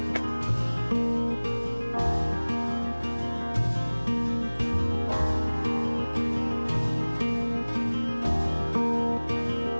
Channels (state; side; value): inverted; both; correlation -1.00